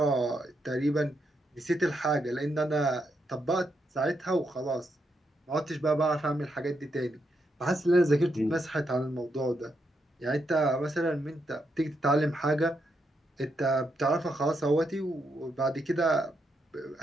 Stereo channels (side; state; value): both; normal; correlation 0.81